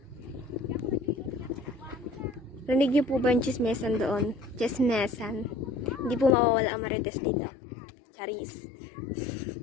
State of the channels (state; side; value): drops out; right; at 6.4 s